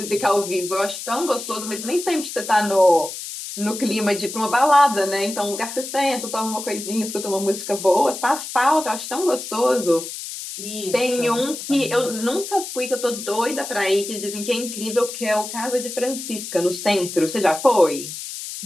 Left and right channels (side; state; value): left; noise; hiss, 9 dB below the sound